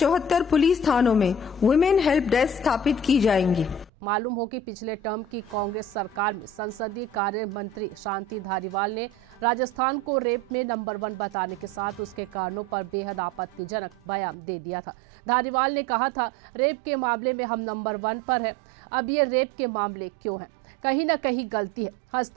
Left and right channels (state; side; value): drops out; left; at 14.4 s